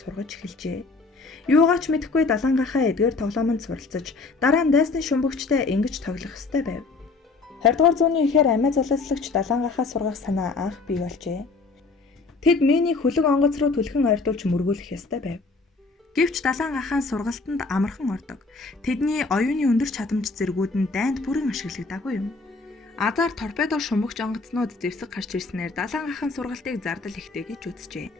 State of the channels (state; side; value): quieter; right; 3.9 dB